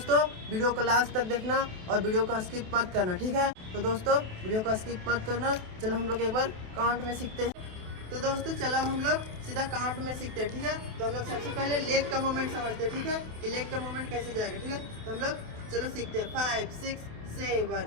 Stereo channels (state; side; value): late; left; 28 ms